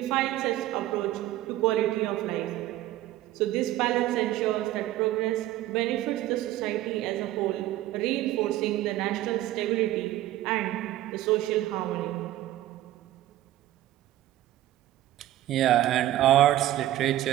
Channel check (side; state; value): left; quieter; 14.5 dB